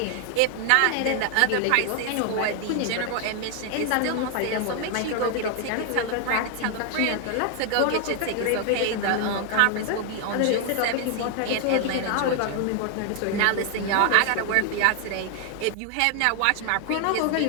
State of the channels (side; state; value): both; different; correlation 0.00